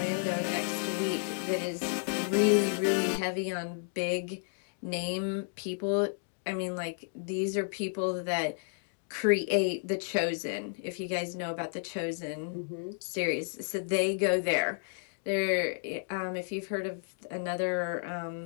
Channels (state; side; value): silent; right; digital silence